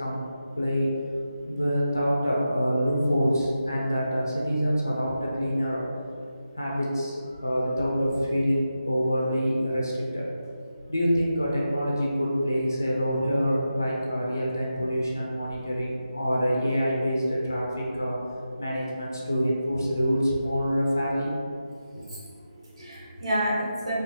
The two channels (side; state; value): both; inverted; correlation -0.90